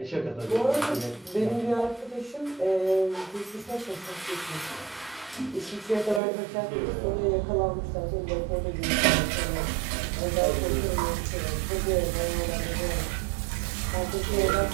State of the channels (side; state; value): left; drops out; at 6.2 s